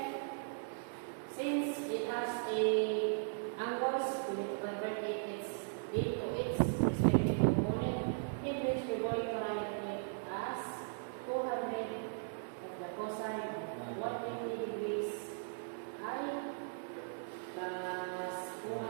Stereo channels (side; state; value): left; silent; digital silence